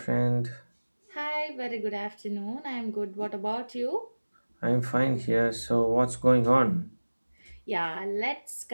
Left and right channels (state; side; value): inverted; both; correlation -1.00